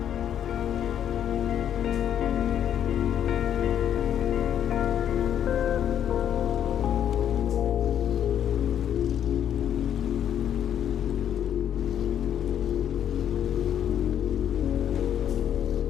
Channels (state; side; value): quieter; right; 9.8 dB